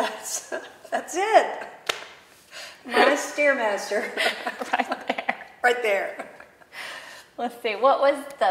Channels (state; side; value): identical; both; correlation 1.00